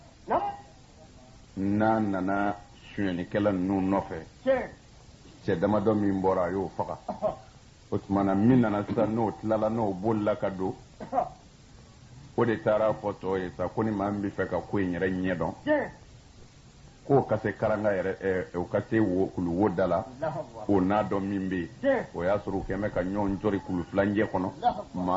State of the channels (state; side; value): identical; both; correlation 1.00